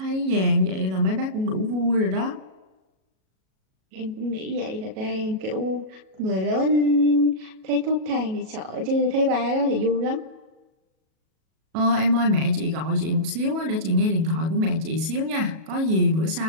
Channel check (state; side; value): late; left; 37 ms